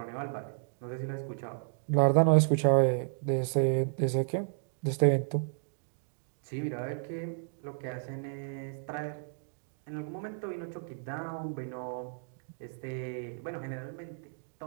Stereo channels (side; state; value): left; silent; digital silence